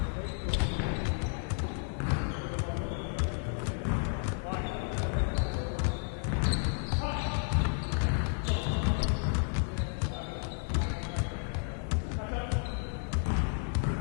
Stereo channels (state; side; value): silent; right; 56 dB below the other